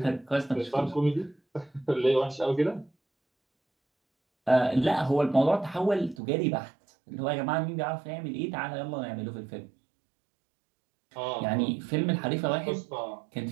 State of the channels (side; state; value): left; drops out; at 6.2 s